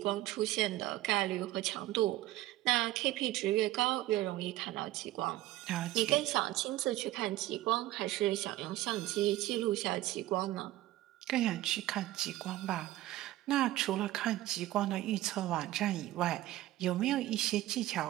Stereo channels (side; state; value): left; quieter; 15.9 dB